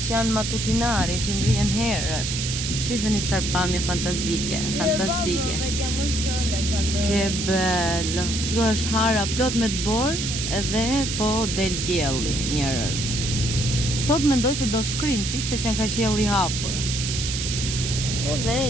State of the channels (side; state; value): right; noise; hiss, 3 dB below the sound